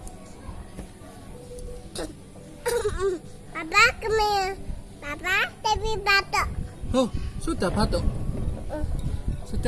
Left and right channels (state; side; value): identical; both; correlation 1.00